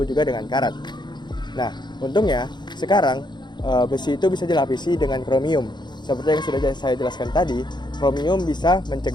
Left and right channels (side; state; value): right; late; 0.21 ms